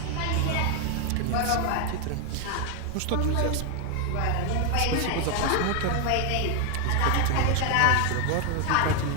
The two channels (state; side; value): different; both; correlation 0.01